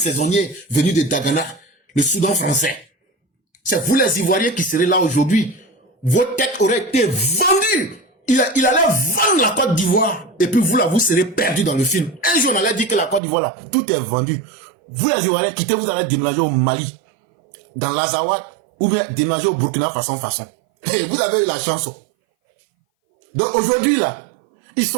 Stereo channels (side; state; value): left; drops out; at 13.2 s